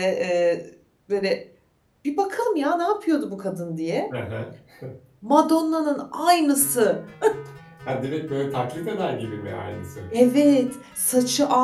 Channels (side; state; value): both; identical; correlation 1.00